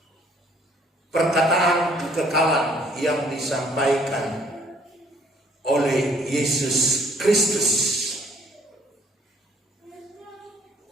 perkataan kekekalan yang disampaikan oleh Yesus Kristus.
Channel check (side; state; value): both; normal; correlation 0.60